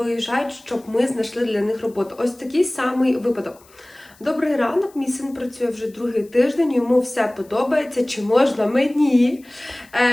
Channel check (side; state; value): left; noise; hiss, 28 dB below the sound